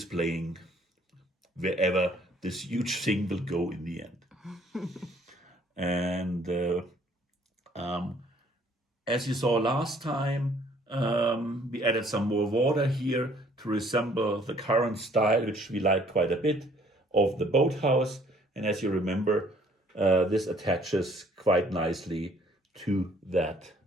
wherever this huge thing will go in the end. And as you saw last time, we added some more water here to resemble the current style, which we like quite a bit, of the boathouse. And as you remember, this attaches quite nicely to that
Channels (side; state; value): both; normal; correlation 0.60